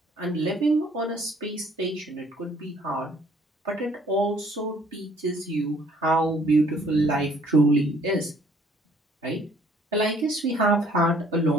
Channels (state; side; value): normal; both; correlation 0.60